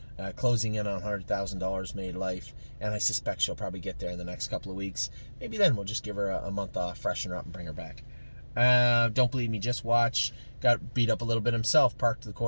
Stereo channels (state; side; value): inverted; both; correlation -1.00